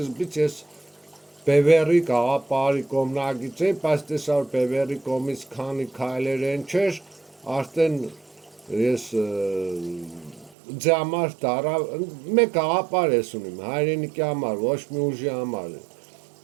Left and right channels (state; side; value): drops out; left; at 10.6 s